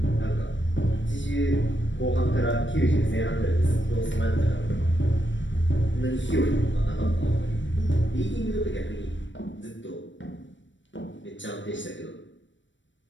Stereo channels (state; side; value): late; right; 0.54 ms